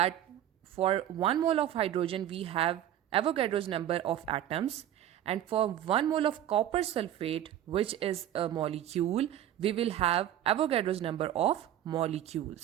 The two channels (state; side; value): quieter; left; 11.8 dB